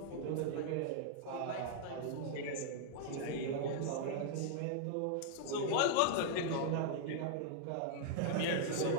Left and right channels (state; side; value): different; both; correlation -0.01